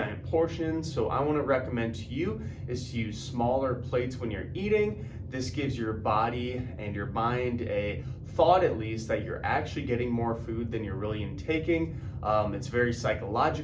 portions. So I want to recommend to you is to use smaller plates when you're eating. This gives your body and your mind a thought, at least, that you're actually getting more food than you're really intaking. It's very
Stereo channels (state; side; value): identical; both; correlation 1.00